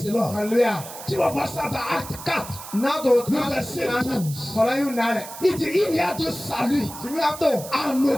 the Lord. Alléluia. Tu vas voir ça dans Acte 4, le verset 12. Il dit, il n'y a de salut en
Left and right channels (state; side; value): noise; right; hiss, 13 dB below the sound